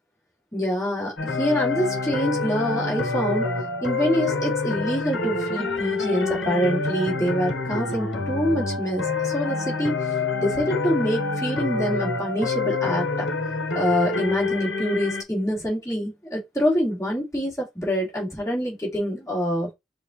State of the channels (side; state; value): both; normal; correlation 0.61